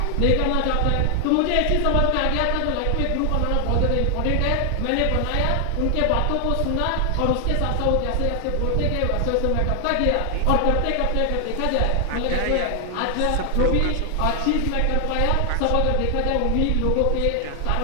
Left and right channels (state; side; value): different; both; correlation 0.00